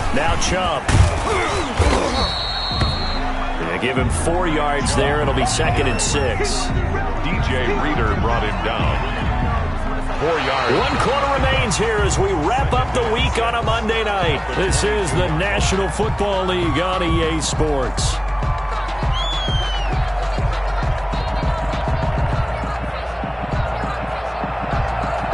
Now Chubb. They give him 4 yards there. It'll be 2nd and 6. DJ Reader brought him down. 4 yards. 1 quarter remains here as we wrap up the week on a Monday night. This is the National Football League on EA Sports.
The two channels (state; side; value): identical; both; correlation 1.00